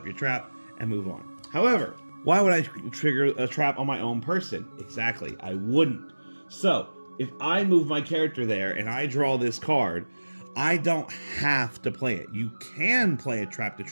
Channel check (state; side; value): inverted; both; correlation -1.00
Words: your trap and move on. However, why would I trigger a trap on my own person? Exactly, I wouldn't. So if I move my character there and I draw this card, I don't have to play it. You can play a trap to